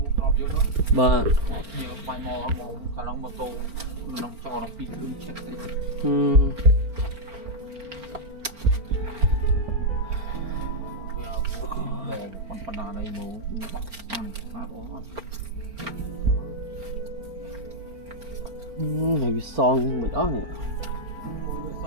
ba nhiều bài mò khả năng mô tô nó cho nó pin cứng chắc đấy con phần nào đây mồ ăn phát ổn này bị son bị đó nè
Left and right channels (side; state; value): left; late; 4.4 ms